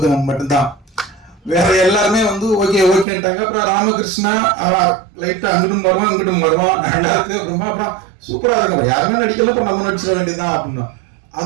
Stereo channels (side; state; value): left; drops out; at 3.1 s